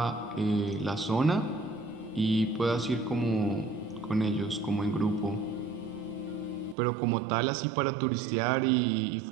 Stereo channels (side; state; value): left; drops out; at 6.8 s